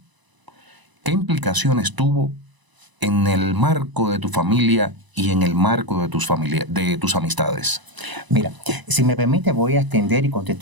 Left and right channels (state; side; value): late; left; 1.0 ms